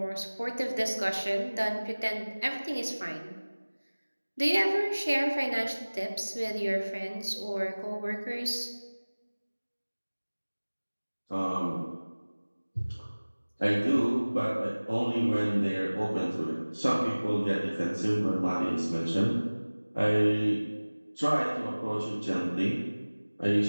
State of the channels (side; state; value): both; inverted; correlation -1.00